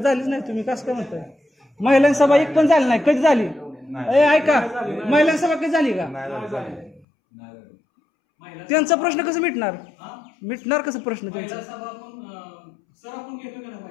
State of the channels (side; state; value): right; drops out; at 7.1 s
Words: नाही. तुम्ही कसं काय म्हणताय महिलांची सभा एक पण झाली नाही. कधी झाली ए ऐका महिलांची सभा कधी झाली का. महिला त्यांचा प्रश्न कसं मिटणार हा? मिटणार कसं प्रश्न महिला त्यांचा. सभा पण सर आपण घेतो का ना